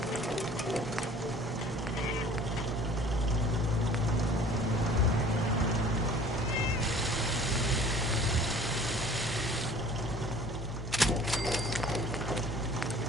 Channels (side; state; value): both; normal; correlation 0.49